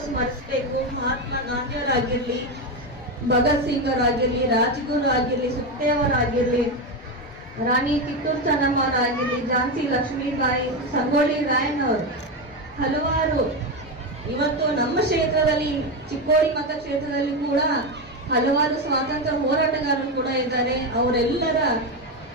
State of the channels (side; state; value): both; normal; correlation 0.13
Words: ಸ್ಮರಿಸಬೇಕು. ಮಹಾತ್ಮ ಗಾಂಧಿಯವರಾಗಿರ್ಲಿ, ಭಗತ್ ಸಿಂಗ್ ಅವರಾಗಿರ್ಲಿ, ರಾಜ್ಗುರು ಆಗಿರ್ಲಿ, ಸುಖದೇವರಾಗಿರ್ಲಿ, ರಾಣಿ ಕಿತ್ತೂರು ಚೆನ್ನಮ್ಮ ಅವರಾಗಿರ್ಲಿ, ಝಾನ್ಸಿ ಲಕ್ಷ್ಮೀಬಾಯಿ, ಸಂಗೊಳ್ಳಿ ರಾಯಣ್ಣವರು, ಹಲವಾರು ಇವತ್ತು ನಮ್ಮ ಕ್ಷೇತ್ರದಲ್ಲಿ ಚಿಕ್ಕೋಡಿ ಮತಕ್ಷೇತ್ರದಲ್ಲಿ ಕೂಡ ಹಲವಾರು ಸ್ವಾತಂತ್ರ್ಯ ಹೋರಾಟಗಾರರು ಕೂಡ ಇದ್ದಾರೆ. ಅವರೆಲ್ಲರ